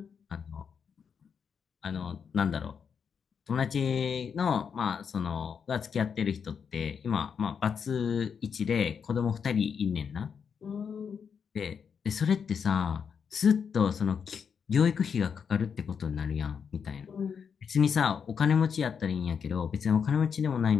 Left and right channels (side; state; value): right; quieter; 6.7 dB